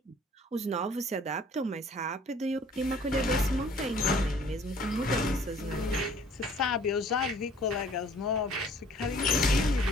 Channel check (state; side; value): normal; both; correlation 0.55